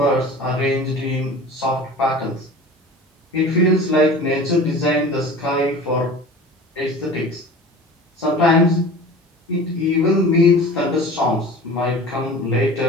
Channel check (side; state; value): both; normal; correlation 0.39